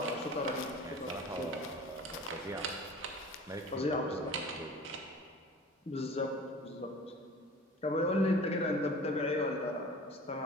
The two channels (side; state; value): both; normal; correlation 0.41